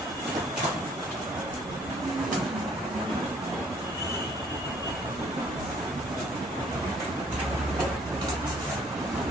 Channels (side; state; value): both; normal; correlation 0.60